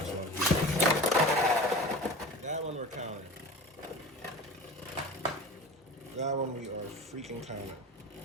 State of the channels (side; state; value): both; normal; correlation 0.35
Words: one. That one we're counting. That one we are freaking counting.